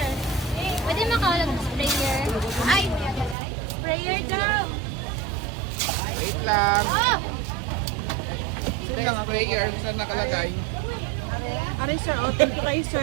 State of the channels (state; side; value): drops out; left; at 3.4 s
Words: Pwede makawalag ng sprayer. Ay, sprayer daw. Wait lang. Oh! Ito yung sprayer. Saan nakalagay? Aray sir, oh, thank you kayo